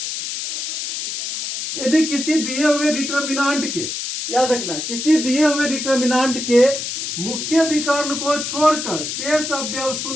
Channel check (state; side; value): noise; left; hiss, 5 dB below the sound